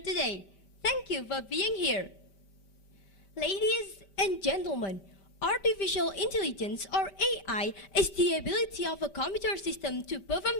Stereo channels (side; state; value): right; late; 5.1 ms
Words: Thank you for being here. Ladies and gentlemen, artificial intelligence, or AI, is the ability of a computer system to